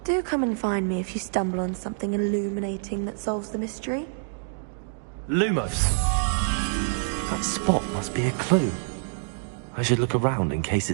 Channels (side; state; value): left; silent; digital silence